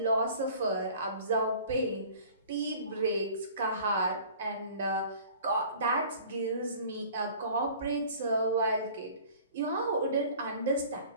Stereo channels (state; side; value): inverted; both; correlation -0.47